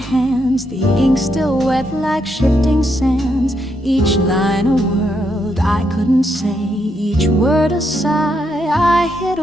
the ink still wet like shifting sands. Each line a word I couldn't say, each word a sigh I hid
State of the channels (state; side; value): normal; both; correlation 0.78